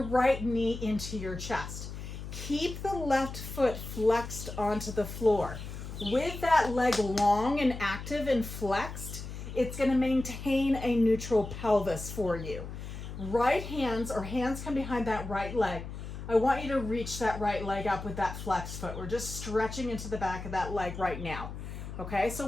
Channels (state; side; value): noise; left; hum, 9 dB below the sound